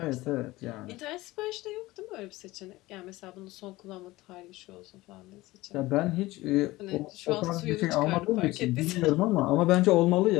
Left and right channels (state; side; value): quieter; right; 19.0 dB